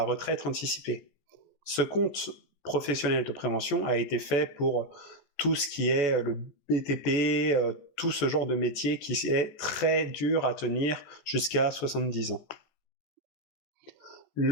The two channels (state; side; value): late; right; 14 ms